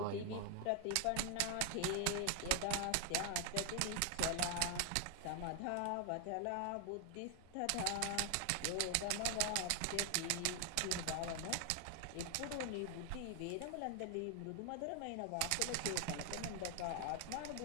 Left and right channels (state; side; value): different; both; correlation 0.00